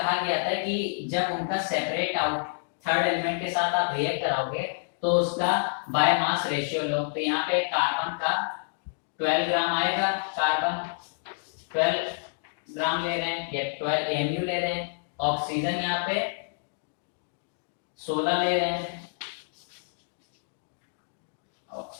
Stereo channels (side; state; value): right; silent; digital silence